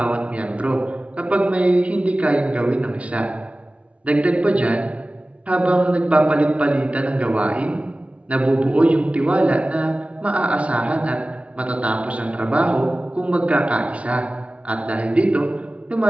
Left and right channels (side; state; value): left; late; 0.063 ms